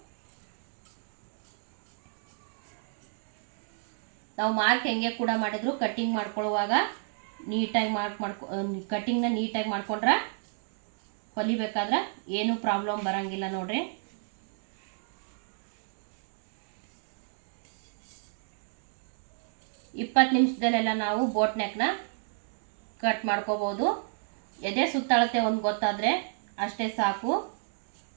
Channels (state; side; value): silent; left; digital silence